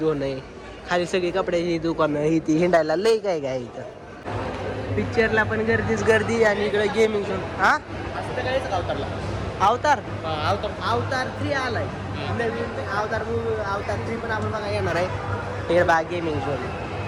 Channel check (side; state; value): both; identical; correlation 1.00